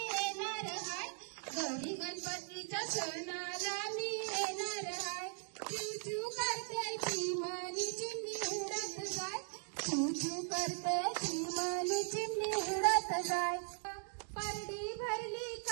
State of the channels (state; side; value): silent; left; 52 dB below the other